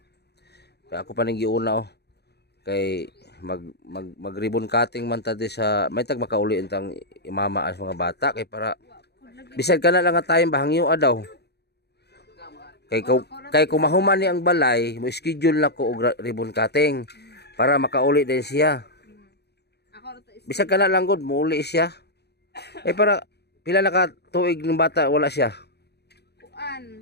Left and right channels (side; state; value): right; late; 0.48 ms